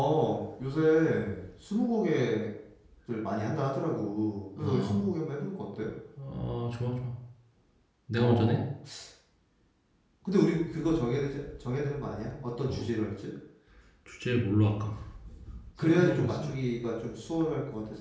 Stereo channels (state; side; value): identical; both; correlation 1.00